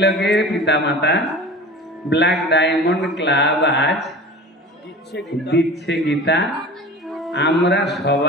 পিতামাতা ব্ল্যাক ডায়মন্ড ক্লাব আজ দিচ্ছে গীতা। আমরা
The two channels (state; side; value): normal; both; correlation 0.37